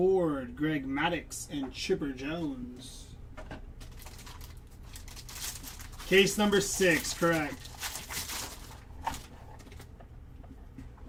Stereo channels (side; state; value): both; identical; correlation 1.00